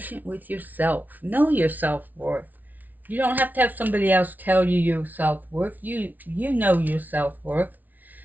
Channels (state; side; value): late; left; 0.080 ms